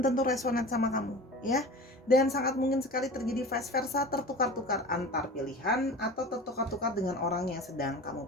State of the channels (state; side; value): normal; both; correlation 0.36